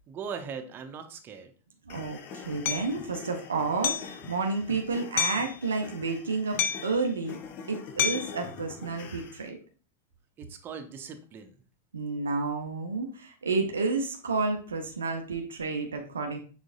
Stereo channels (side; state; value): both; inverted; correlation -0.47